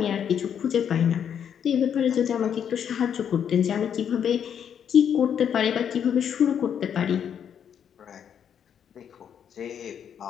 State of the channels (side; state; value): right; quieter; 8.4 dB